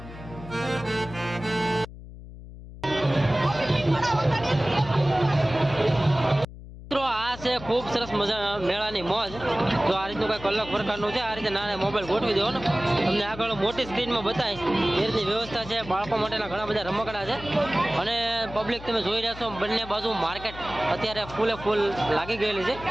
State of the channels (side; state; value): left; noise; hum, 15 dB below the sound